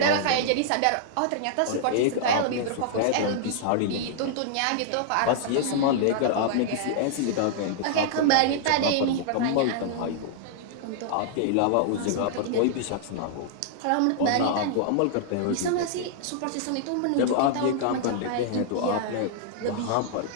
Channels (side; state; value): both; different; correlation -0.01